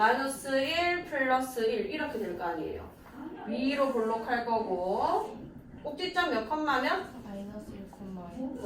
1 플러스 1 이렇게 될 거 아니에요. 위로 볼록할 거고 꼭지점 몇 컴마면? 마이너스 1,1.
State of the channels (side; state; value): both; identical; correlation 1.00